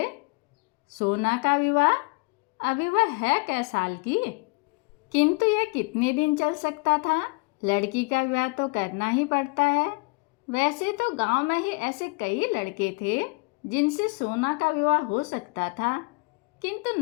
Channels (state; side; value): quieter; right; 29.7 dB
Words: सोना का विवाह? अभी वह है कै साल की? किंतु यह कितने दिन चल सकता था? लड़की का विवाह तो करना ही पड़ता है। वैसे तो गांव में ही ऐसे कई लड़के थे जिनसे सोना का विवाह हो सकता था, किंतु